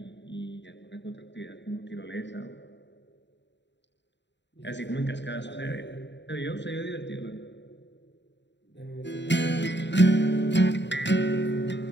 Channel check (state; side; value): late; right; 0.52 ms